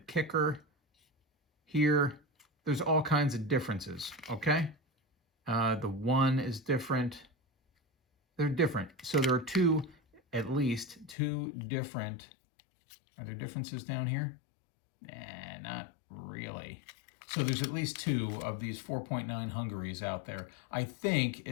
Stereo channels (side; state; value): right; drops out; at 11.2 s